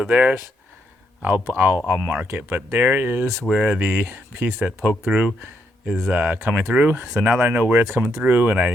there's, I'll mark it, but there is where the piece that poked through is coming through. So now that I know where it's coming through, and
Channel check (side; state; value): both; normal; correlation 0.76